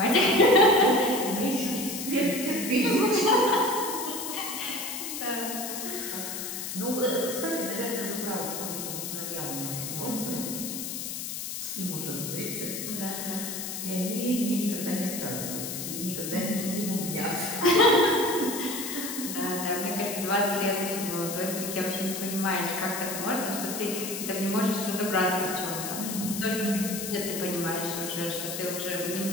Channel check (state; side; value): noise; left; hiss, 5 dB below the sound